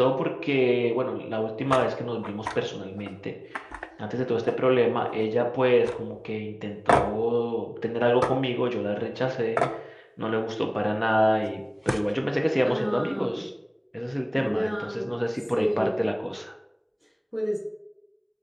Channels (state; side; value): identical; both; correlation 1.00